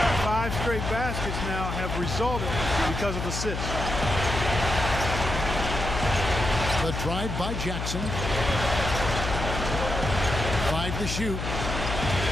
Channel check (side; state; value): left; noise; hum, 4 dB below the sound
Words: 5 straight baskets now have resulted because of assists. The drive by Jackson. 5 to shoot.